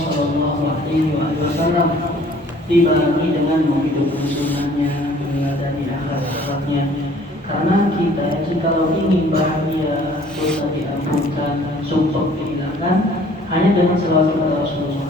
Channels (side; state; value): both; normal; correlation 0.55